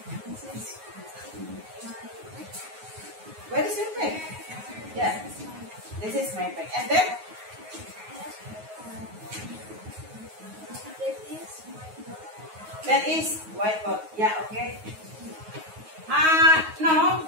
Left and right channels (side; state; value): left; late; 9.4 ms